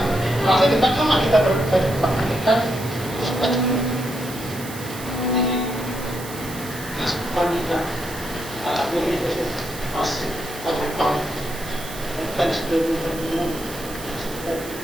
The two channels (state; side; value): noise; right; hiss, 13 dB below the sound